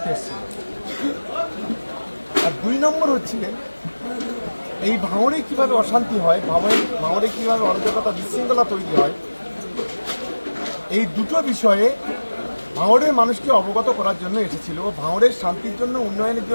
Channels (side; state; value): both; inverted; correlation -1.00